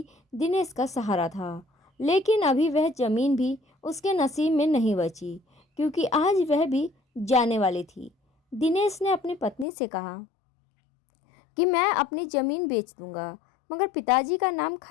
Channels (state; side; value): drops out; right; at 9.7 s